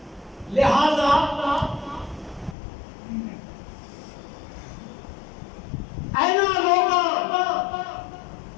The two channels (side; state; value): right; drops out; at 2.6 s